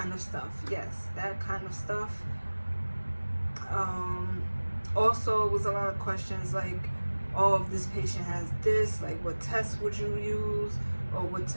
of stuff, yes, that kind of stuff. Also, it was a lot of questions like, oh, if this patient has this, like what test would you use, or what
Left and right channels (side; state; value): both; inverted; correlation -1.00